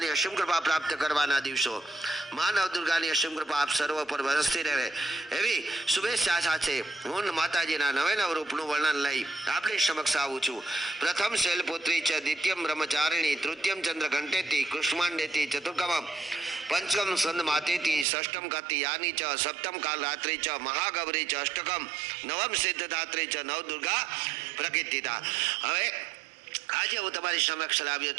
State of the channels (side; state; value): left; drops out; at 18.1 s